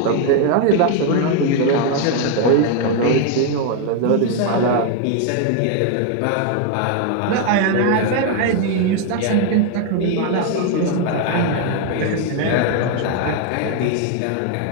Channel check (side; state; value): both; different; correlation 0.01